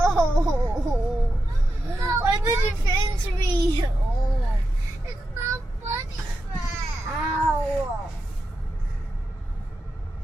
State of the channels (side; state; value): both; normal; correlation 0.88